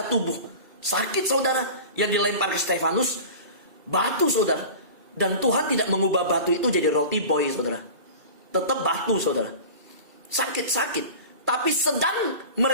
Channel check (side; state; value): left; late; 2.3 ms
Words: tubuh. Sakit, saudara, yang dilempar ke Stefanus, batu, saudara. Dan Tuhan tidak mengubah batu itu jadi roti boy, saudara. Tetap batu, saudara. Sakit-sakit. Tapi sedang